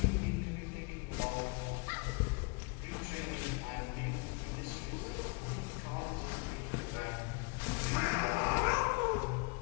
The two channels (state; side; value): quieter; right; 31.9 dB